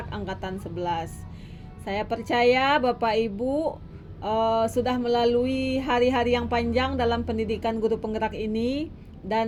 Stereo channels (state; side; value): identical; both; correlation 1.00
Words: angkatan 11. Saya percaya Bapak Ibu sudah melalui hari-hari yang panjang dalam pendidikan guru penggerak ini,